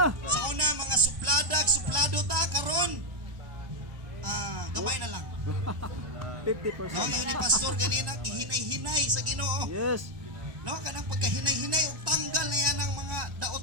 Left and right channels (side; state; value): left; late; 1.1 ms